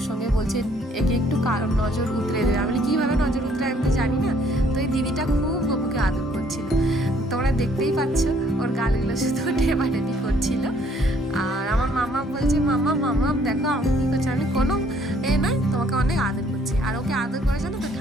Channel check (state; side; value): normal; both; correlation 0.63